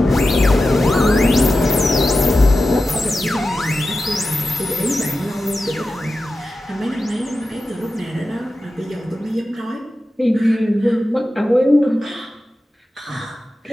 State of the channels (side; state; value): both; normal; correlation 0.93